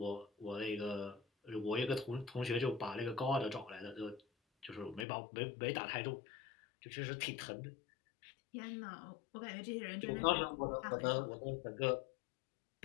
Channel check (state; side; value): drops out; right; at 5.1 s